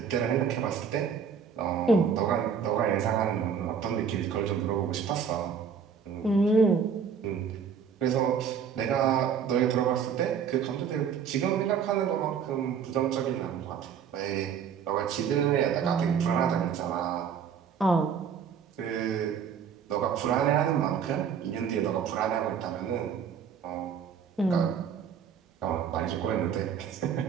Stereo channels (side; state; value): left; quieter; 7.1 dB